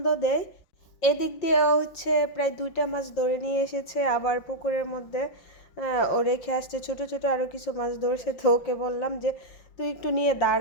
দেয়। এদিক দিয়ে হচ্ছে প্রায় 2টা মাছ ধরে নিয়ে এসেছে, আবার পুকুরের মধ্যে ও রেখে আসছে ছোট ছোট আরও কিছু মাছ ধরছে। তো ওকে বললাম যে তুই একটু নিয়ে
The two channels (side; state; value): right; late; 5.9 ms